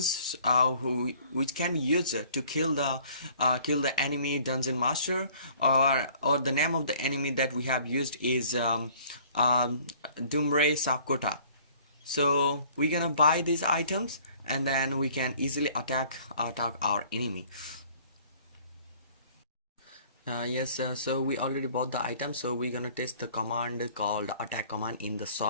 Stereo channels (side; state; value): both; inverted; correlation -0.55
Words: which can be used to kill the enemy dungeon master, or the name of the enemy that we have used is Dumbre Sapkota. So we're gonna buy these items, and then we can easily attack our enemy. Yes, so we already bought the item, so we're gonna test the command called attack command in the